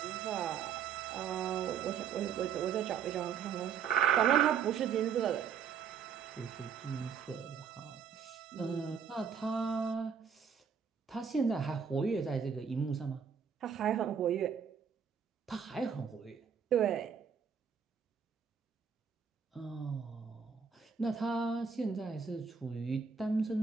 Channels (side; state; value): left; quieter; 6.9 dB